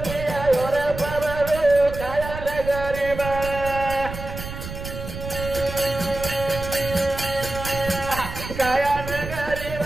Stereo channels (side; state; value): right; noise; rumble, 9 dB below the sound